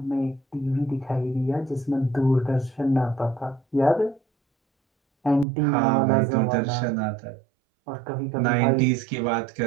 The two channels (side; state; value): left; drops out; at 5.5 s